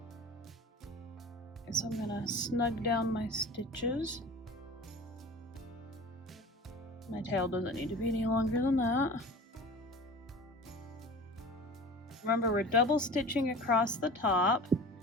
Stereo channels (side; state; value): both; normal; correlation 0.37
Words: So I'm gonna snug down my stitches. My tail doesn't need to be any longer than that. Remember, we're double stitching across the top